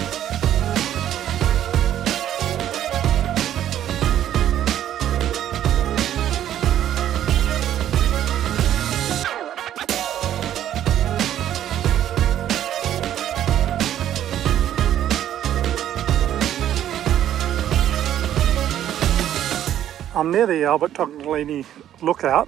I'm near the Tognoleni lookout.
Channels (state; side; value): quieter; left; 11.3 dB